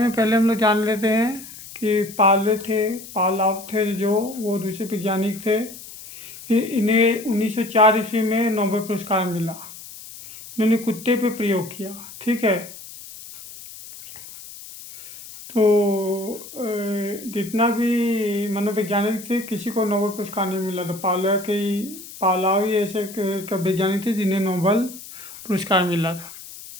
पहले हम लोग जान लेते हैं कि पालाव थे जो वो रूसी वैज्ञानिक थे। इन्हें 1904 ईस्वी में नोबेल पुरस्कार मिला। इन्होंने कुत्ते पे प्रयोग किया। ठीक है, तो जितना भी मनोवैज्ञानिक थे, किसी को नोबेल पुरस्कार नहीं मिला था। पावलोव ही ऐसे वैज्ञानिक थे जिन्हें नोबेल पुरस्कार मिला था।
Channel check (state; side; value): noise; left; hiss, 15 dB below the sound